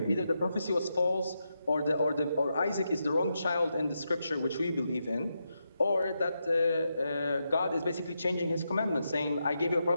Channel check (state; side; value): inverted; both; correlation -0.85